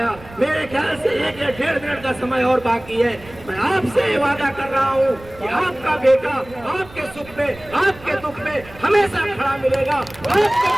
मेरे ख्याल से 1 या 1.5 मिनट का समय और बाकी है। मैं आपसे ये वादा कर रहा हूँ कि आपका बेटा आपके सुख में, आपके दुख में हमेशा खड़ा मिलेगा।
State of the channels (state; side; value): noise; right; rumble, 20 dB below the sound